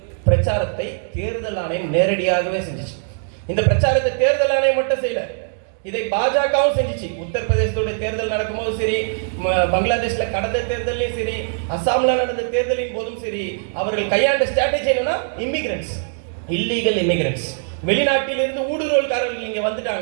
பிரச்சாரத்தை தேர்தல் ஆணையம் நேரடியாகவே செஞ்சிச்சு. இந்த பிரச்சாரத்தை தேர்தல் ஆணையம் மட்டும் செய்யல, இதை பாஜகவும் செஞ்சிச்சு. உத்தரப்பிரதேசத்துடைய தேர்தல் நடக்கும்போது சரி, பங்களாதேஷ்ல கடந்த தேர்தலையும் சரி, அசாம்ல நடந்த தேர்தலின் போதும் சரி, அவர்கள் கையாண்ட ஸ்ட்ராட்டஜி என்னன்னா, இமிகிரன்ட்ஸ், இல்லீகல் இமிகிரன்ட்ஸ், வெளிநாட்டிலிருந்து ஊடுருவல்காரர்கள் இங்க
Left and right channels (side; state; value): left; silent; digital silence